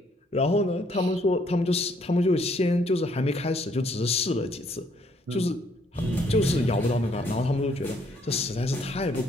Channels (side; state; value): both; normal; correlation 0.67